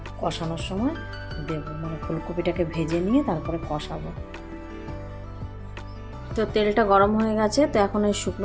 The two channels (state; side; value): identical; both; correlation 1.00